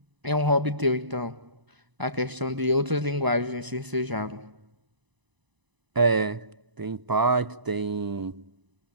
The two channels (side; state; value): left; late; 1.0 ms